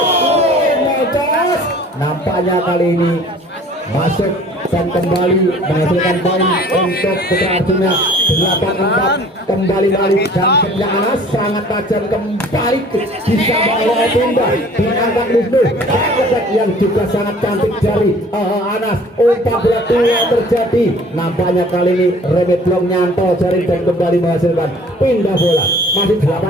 Nampaknya kali ini masuk dan kembali menghasilkan poin untuk Putra Arjuna 8-4. Kembali balik dan setnya Anas sangat tajam kembali bisa bawa pindah diangkat Wisnu yang juga sangat cantik dari Anas. Umpan bola tua terjadi, nampaknya kali ini remit blok nyantol jaring dan kembali menghasilkan pindah bola. Masih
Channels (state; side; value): normal; both; correlation 0.51